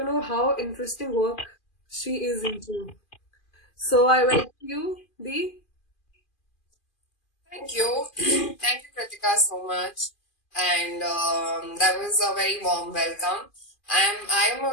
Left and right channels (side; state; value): right; late; 2.4 ms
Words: know how interesting work she is into. So I welcome you, Dee. Thank you. Thank you, Kritika, so much. And that was a very warm welcome. I am